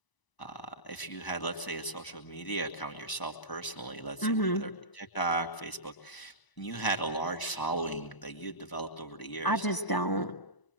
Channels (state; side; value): late; right; 1.0 ms